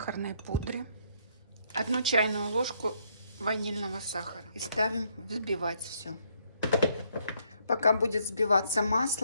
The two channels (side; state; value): both; inverted; correlation -0.71